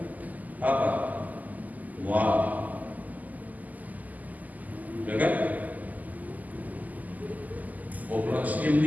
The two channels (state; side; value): late; left; 0.080 ms